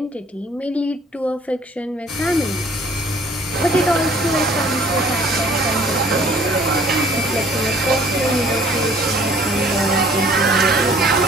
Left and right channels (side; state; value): both; normal; correlation 0.56